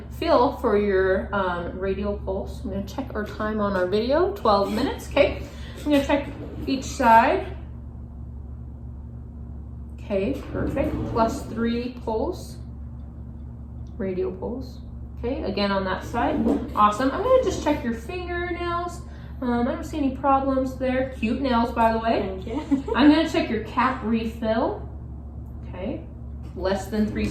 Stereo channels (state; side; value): identical; both; correlation 1.00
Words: feel for your radial pulse. I'm going to check our time on our video, 12 minutes. Okay, I'm going to check each side. Okay, perfect. +3 pulse, radial pulse. Okay, again on that side. Awesome. I'm going to just check your fingernails. I don't see any problems there. Cute nails, by the way. Thank you. I'm going to check your cap refill. Okay. Less than 3